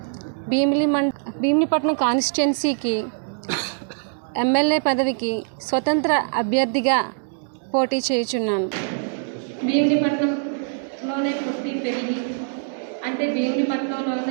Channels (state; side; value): silent; left; digital silence